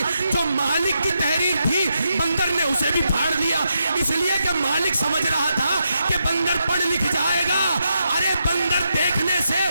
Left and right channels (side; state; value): both; inverted; correlation -0.83